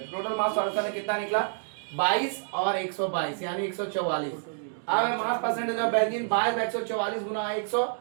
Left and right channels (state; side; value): silent; left; digital silence